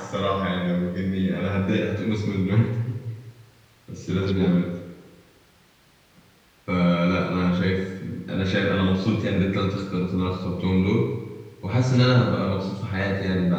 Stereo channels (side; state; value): both; identical; correlation 1.00